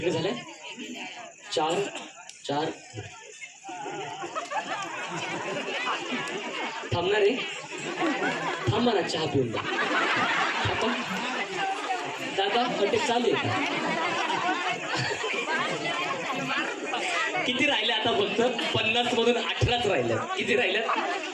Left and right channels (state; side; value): identical; both; correlation 1.00